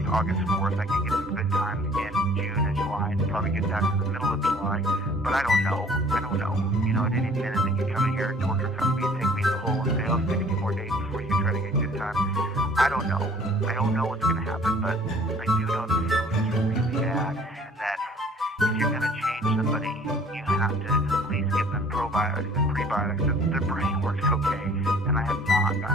August 4th. I can get some good time in June and July and probably get that in the middle of July. But I don't know. At any minute they can come in here and torture cuff me and take me in the hole and say, oh, 60 more days before you can try to get good time. I don't know. I don't know what's gonna happen, but I do know the food is really bad, and that if you're gonna change somebody, you have to at least give them probiotics and prebiotics so that their brain works okay. And I have not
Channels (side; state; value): both; normal; correlation 0.53